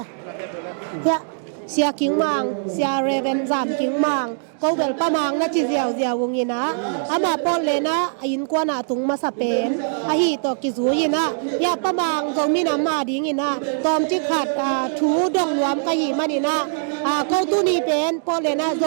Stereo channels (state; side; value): silent; left; digital silence